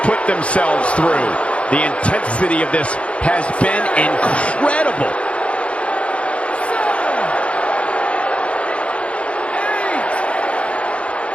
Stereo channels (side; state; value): right; late; 0.061 ms